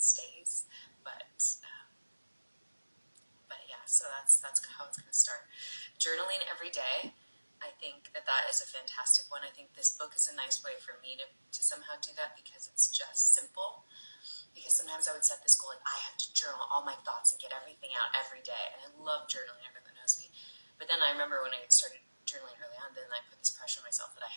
stays. But yeah, so that's how it's going to start. Journaling every day. I think that is a fantastic one. I think this book is a nice way for me to somehow do that because it's just simple. Because sometimes I would set this goal like I have to journal all my thoughts and get everything out every day, and I love journaling. Everyone that knows me. But then I remember when I started journaling early on, then I put this pressure on myself that I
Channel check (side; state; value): both; inverted; correlation -1.00